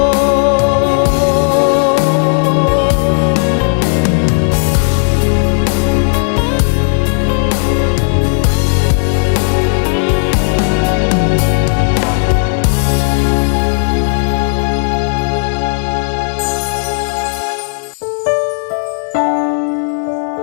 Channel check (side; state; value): right; silent; digital silence